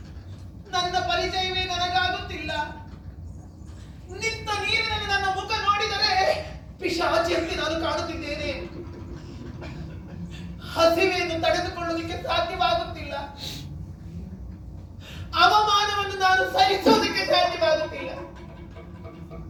ನನ್ನ ಪರಿಚಯವೇ ನನಗಾಗುತ್ತಿಲ್ಲ. ನಿಂತ ನೀರಿನಲ್ಲಿ ನನ್ನ ಮುಖ ನೋಡಿದರೆ ಪಿಶಾಚಿಯಂತೆ ನಾನು ಕಾಣುತ್ತಿದ್ದೇನೆ. ಹಸಿವೆಯನ್ನು ತಡೆದುಕೊಳ್ಳುವುದಕ್ಕೆ ಸಾಧ್ಯವಾಗುತ್ತಿಲ್ಲ. ಅವಮಾನವನ್ನು ನಾನು ಸಹಿಸುವುದಕ್ಕೆ ಸಾಧ್ಯವಾಗುತ್ತಿಲ್ಲ.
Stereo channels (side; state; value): both; identical; correlation 1.00